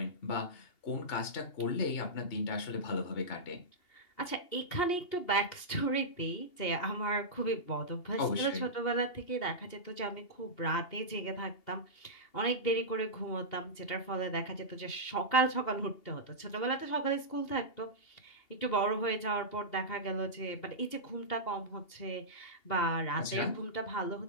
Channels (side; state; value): right; late; 2.8 ms